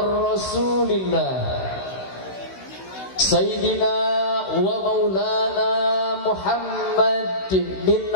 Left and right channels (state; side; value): late; right; 16 ms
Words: sayyidina wa maulana Muhammad bin